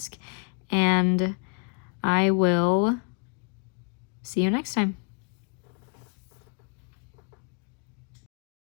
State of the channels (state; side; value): quieter; right; 38.0 dB